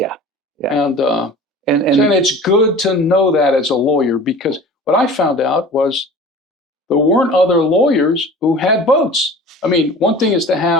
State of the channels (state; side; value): normal; both; correlation 0.41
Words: And it's good to know that as a lawyer, because what I found out was there weren't other lawyers who had boats. I mean, one thing is to